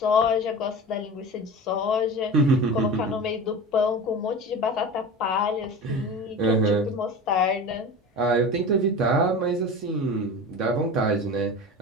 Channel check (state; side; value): normal; both; correlation 0.31